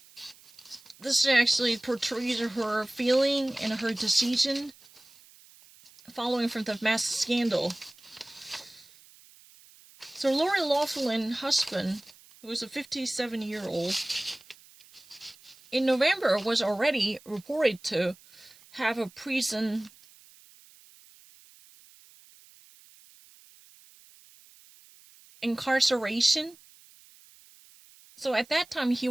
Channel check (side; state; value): right; noise; hiss, 25 dB below the sound